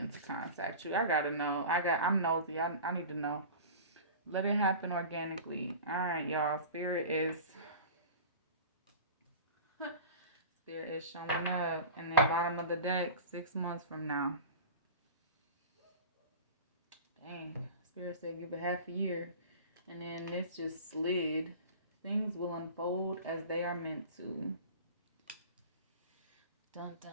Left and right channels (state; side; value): inverted; both; correlation -0.36